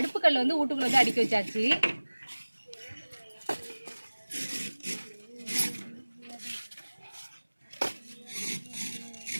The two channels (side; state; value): both; inverted; correlation -1.00